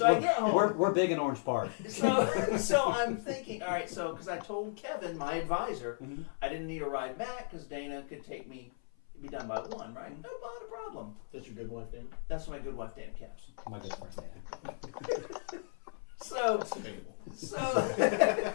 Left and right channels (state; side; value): silent; right; 54 dB below the other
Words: I get home. We're big in Orange Park. So I'm thinking, all right, because I told Kevin, my advisor, I didn't need a ride back because Dana could take me, be done by 1, right? No, not a problem. That's your good wife, Dana? That's my good wife, Dana Caps. My good friend Dana.